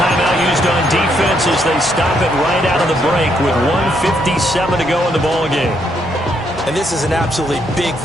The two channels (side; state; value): both; normal; correlation 0.74